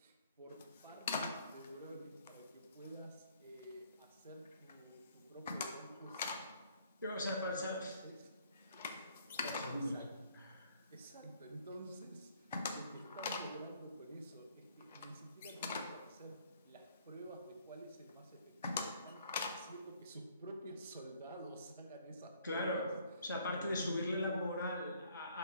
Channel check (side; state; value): both; inverted; correlation -0.62